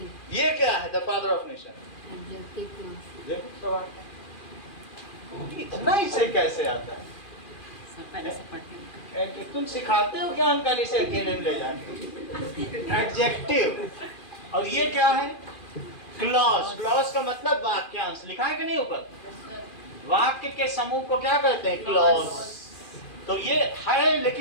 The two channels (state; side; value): late; right; 2.4 ms